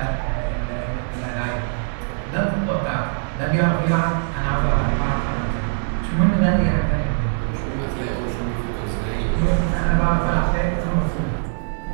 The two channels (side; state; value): left; silent; digital silence